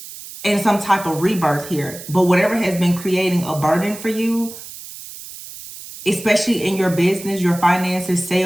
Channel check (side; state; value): right; noise; hiss, 14 dB below the sound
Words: and some type of rebirth here. But whatever has been creating a burden for you, especially in your business, your finances,